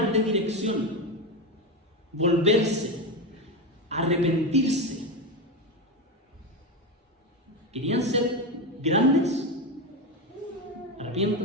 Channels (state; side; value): normal; both; correlation 0.15